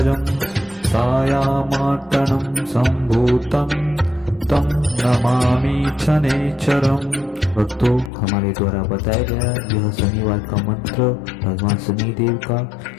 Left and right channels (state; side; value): drops out; right; at 8.1 s